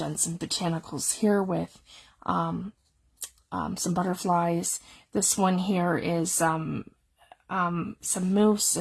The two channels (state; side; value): identical; both; correlation 1.00